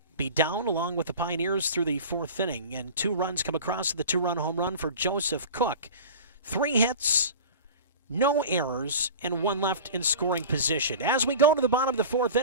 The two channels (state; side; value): inverted; both; correlation -0.35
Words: be down along with the Pioneers through the 4th inning. And 2 runs come across to the 2-run home run for Joseph Cook. 3 hits, no errors, and 1 left in scoring position. As we go to the bottom of the 4th